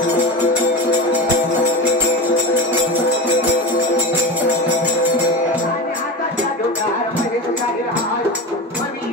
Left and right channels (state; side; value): normal; both; correlation 0.25